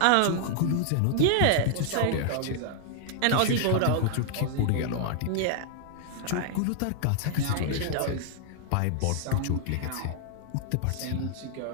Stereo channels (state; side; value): different; both; correlation 0.00